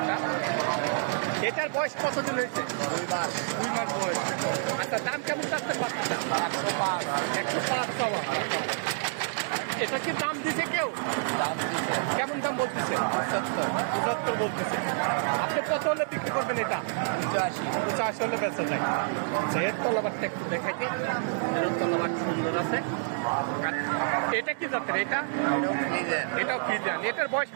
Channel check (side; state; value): left; silent; digital silence